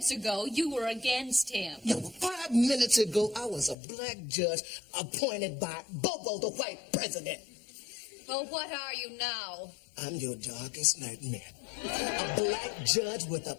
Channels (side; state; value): right; drops out; at 3.8 s